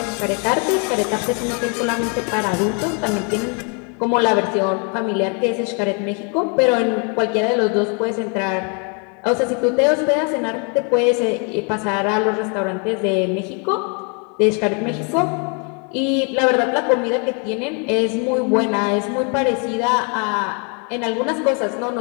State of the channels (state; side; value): quieter; right; 36.6 dB